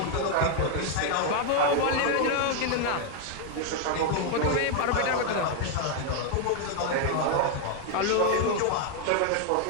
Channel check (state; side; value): different; both; correlation 0.01